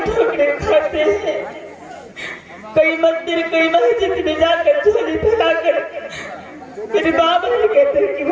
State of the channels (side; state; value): both; identical; correlation 1.00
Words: खाते हैं। कई मंदिर कई मस्जिद में जाकर झोली फैलाकर मेरे बाबा ने कहते हैं कि